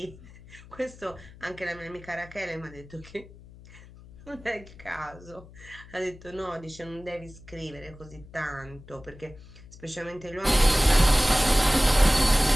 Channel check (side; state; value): left; noise; hum, 20 dB below the sound